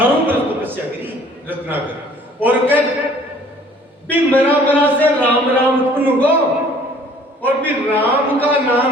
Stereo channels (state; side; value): normal; both; correlation 0.55